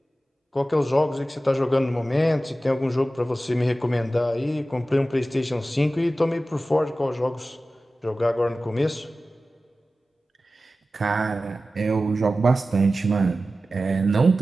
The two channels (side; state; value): both; normal; correlation 0.95